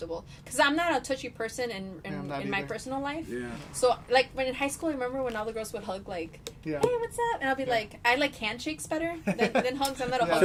because I'm not a touchy person Yeah, I'm in not my either. personal life. Yeah. So like when in high school, I remember when all the girls would hug like, Yeah. "Hey, what's up?" And I'll be like, I like handshakes better than hugs. I'm not a Yeah.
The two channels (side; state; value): both; identical; correlation 1.00